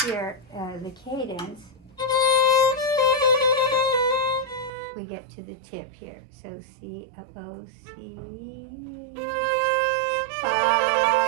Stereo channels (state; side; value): drops out; left; at 4.7 s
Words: here the cadence. We get to the tip here. So C, up, O, C, fa,